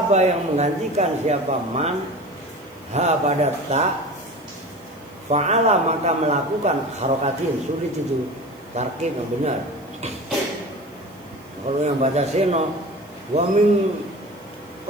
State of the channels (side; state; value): right; noise; hiss, 29 dB below the sound